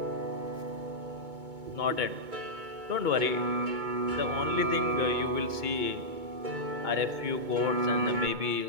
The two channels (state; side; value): late; left; 2.2 ms